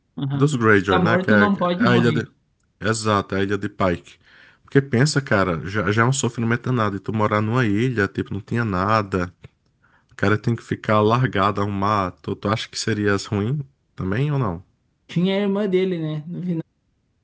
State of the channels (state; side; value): identical; both; correlation 1.00